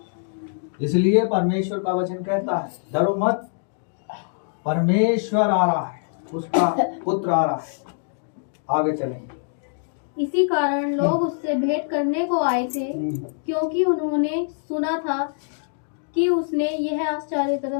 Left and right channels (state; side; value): silent; right; digital silence